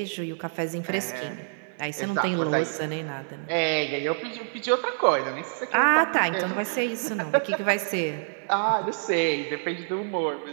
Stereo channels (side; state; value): left; silent; digital silence